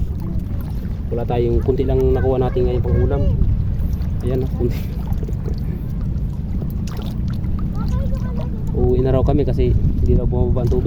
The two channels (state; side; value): identical; both; correlation 1.00